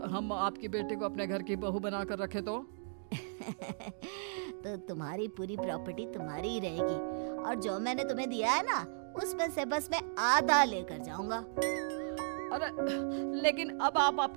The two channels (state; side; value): silent; left; digital silence